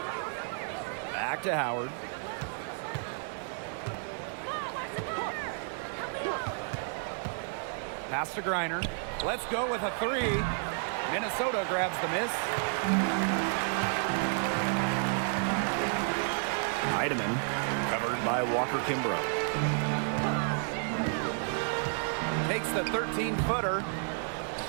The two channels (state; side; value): silent; left; 57 dB below the other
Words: Back to Howard. Pass to Griner. Let's go with a 3. Minnesota grabs the miss. Heidemann covered by Walker Kimbrough. Takes the 13-footer.